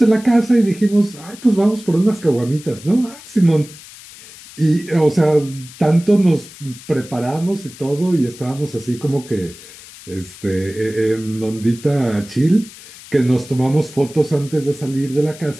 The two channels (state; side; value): noise; left; hiss, 18 dB below the sound